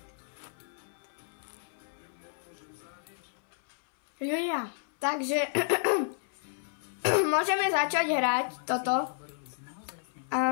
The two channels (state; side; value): silent; right; 57 dB below the other